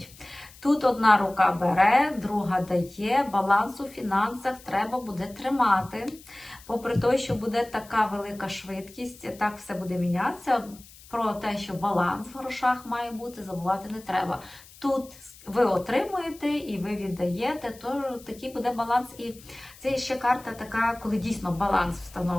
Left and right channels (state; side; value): noise; left; hiss, 22 dB below the sound